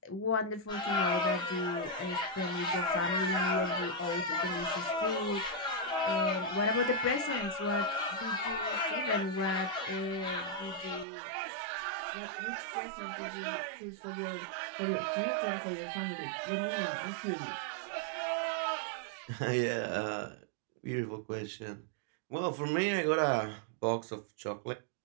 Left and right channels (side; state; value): left; drops out; at 11.1 s